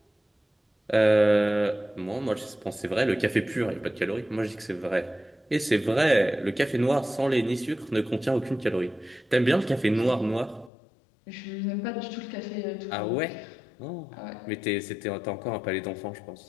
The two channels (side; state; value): right; drops out; at 10.7 s